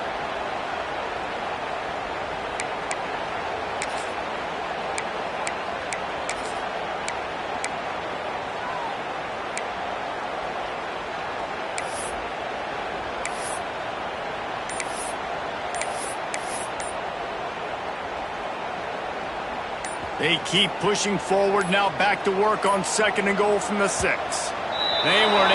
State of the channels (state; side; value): identical; both; correlation 1.00